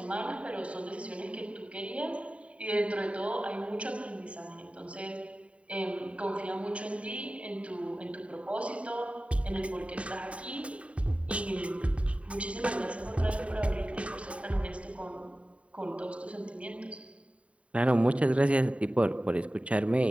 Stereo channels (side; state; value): left; late; 0.064 ms